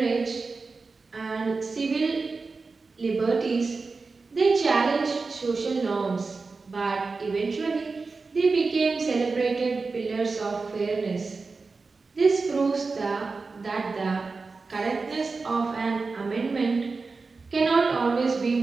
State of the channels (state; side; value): quieter; left; 4.2 dB